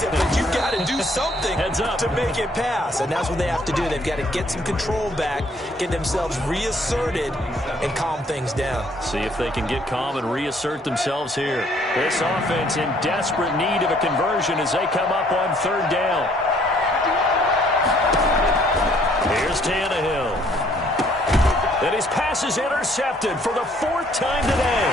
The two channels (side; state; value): both; normal; correlation 0.63